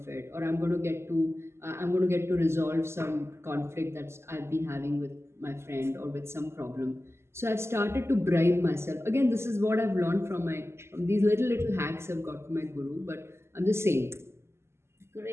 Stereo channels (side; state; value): left; late; 0.12 ms